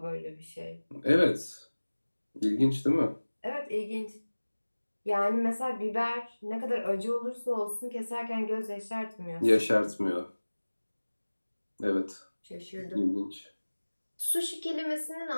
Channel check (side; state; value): both; inverted; correlation -1.00